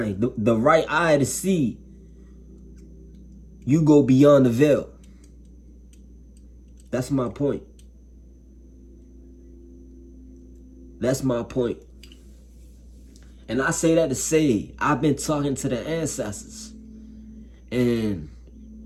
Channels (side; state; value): both; identical; correlation 1.00